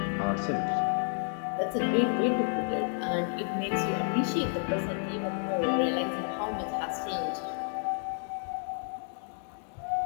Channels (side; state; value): right; silent; digital silence